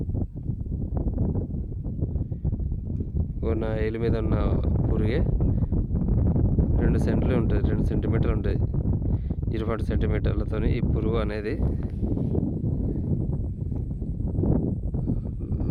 నా ఏలు మీద ఉన్న పురుగే 2 సెంట్లు ఉంటుంది, 2 సెంటీమీటర్లు ఉంటుంది. 20 సెంటీమీటర్లతో ఈ పురుగు అనేది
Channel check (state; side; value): identical; both; correlation 1.00